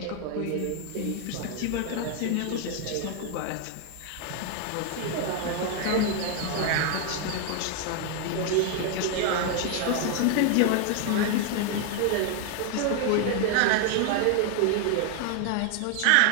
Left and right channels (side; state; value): both; different; correlation 0.00